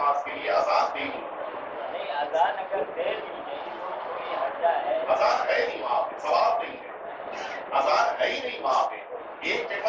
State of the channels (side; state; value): both; identical; correlation 1.00